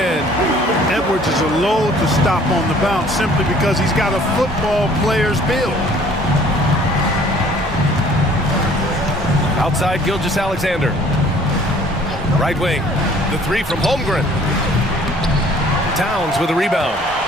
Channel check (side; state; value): both; normal; correlation 0.55